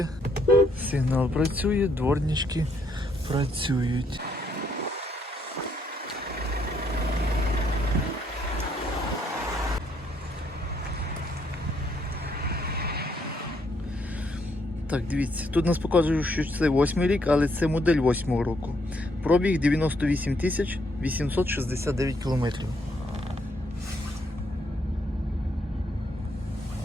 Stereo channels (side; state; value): both; normal; correlation 0.72